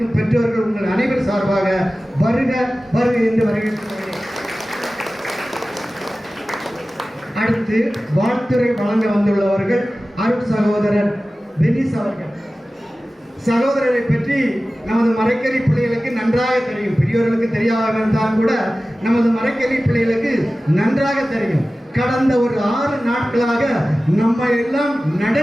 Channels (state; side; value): normal; both; correlation 0.96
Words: பெற்றோர்கள் உங்கள் அனைவர் சார்பாக வருக வருக என்று வரவேற்கிறேன். அடுத்து வாழ்த்துரை வழங்க வந்துள்ளவர்கள் அருட் சகோதரர் பெனிஸ் அவர்கள். சகோதரரை பற்றி நமது மறைக்கல்வி பிள்ளைகளுக்கு நன்றாக தெரியும். பெரியவர்களுக்கு தெரியாமல் இருந்தாலும் கூட நமது மறைக்கல்வி பிள்ளைகளுக்கு நன்றாக தெரியும். கடந்த ஒரு 6 நாட்களாக நம்ம எல்லாம்